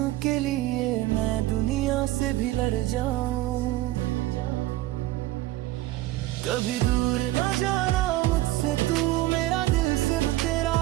के लिए मैं दुनिया से भी लड़ जाऊं। कभी दूर न जाना मुझसे तू, मेरा दिल सिर्फ तेरा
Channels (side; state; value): left; quieter; 16.6 dB